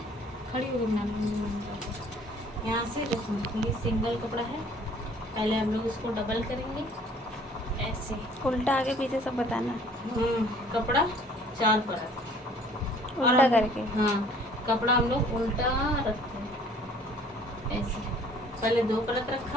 खड़ी हो गई यहाँ से। देखो ये सिंगल कपड़ा है, पहले हम लोग इसको डबल करेंगे ऐसे, उल्टा आगे पीछे सब बताना। कपड़ा 4 परत उल्टा करके। हाँ, कपड़ा हम लोग उल्टा रखते हैं ऐसे। पहले 2 परत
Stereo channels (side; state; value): both; normal; correlation 0.54